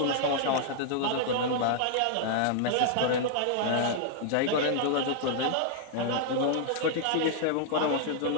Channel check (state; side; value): different; both; correlation -0.01